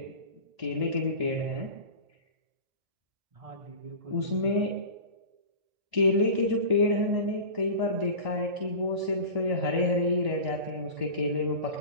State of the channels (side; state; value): left; late; 1.8 ms